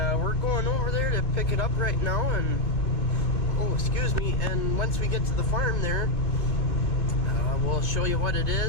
we're going over there to pick it up right now. And oh, excuse me, and once we get to the farm there, we'll show you what it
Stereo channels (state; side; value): late; right; 2.2 ms